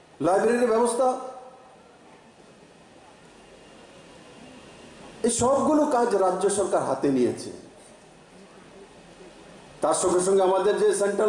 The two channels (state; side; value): identical; both; correlation 1.00